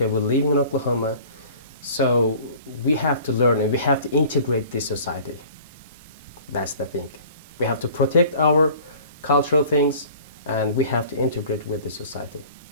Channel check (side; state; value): both; inverted; correlation -0.47